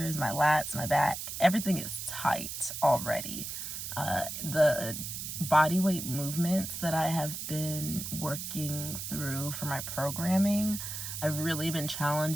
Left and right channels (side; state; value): right; noise; hiss, 6 dB below the sound